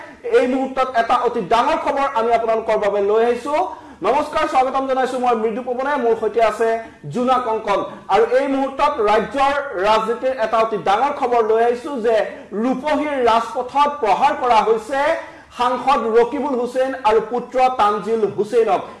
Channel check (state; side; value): identical; both; correlation 1.00